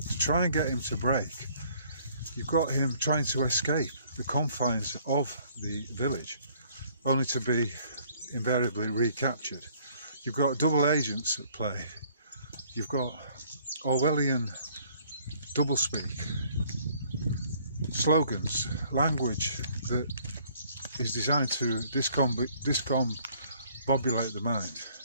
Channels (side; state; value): both; inverted; correlation -0.60